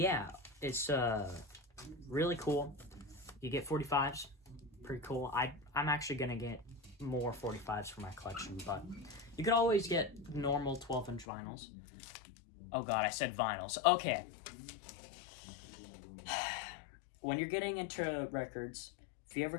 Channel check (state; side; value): drops out; right; at 11.2 s